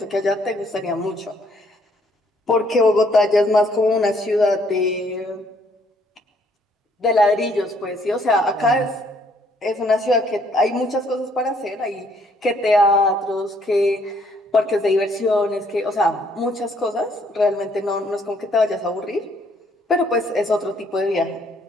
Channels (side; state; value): both; normal; correlation 0.66